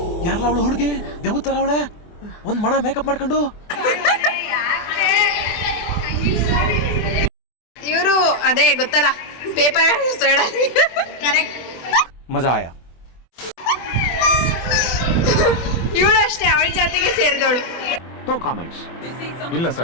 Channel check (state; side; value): late; right; 24 ms